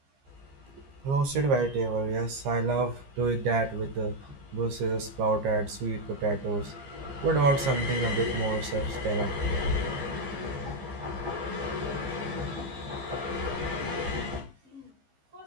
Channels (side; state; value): left; late; 15 ms